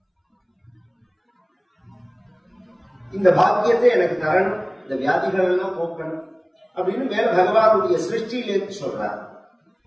இந்த பாக்கியத்தை எனக்கு தரணும், இந்த வியாதிகள் எல்லாம் போக்கணும் அப்படின்னு மேல பகவானுடைய சிருஷ்டியிலேருந்து சொல்றார்.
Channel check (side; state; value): both; identical; correlation 1.00